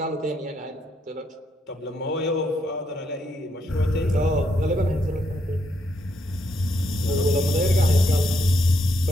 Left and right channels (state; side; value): normal; both; correlation 0.77